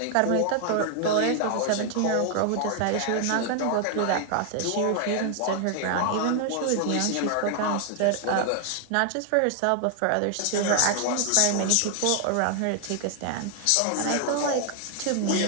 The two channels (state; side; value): different; both; correlation 0.00